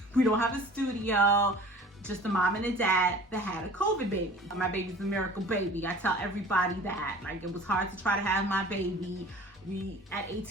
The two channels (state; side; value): normal; both; correlation 0.45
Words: don't have a studio. Just a mom and a dad that had a COVID baby. My baby's a miracle baby. I tell everybody that. Like, it was hard to try to have my baby. At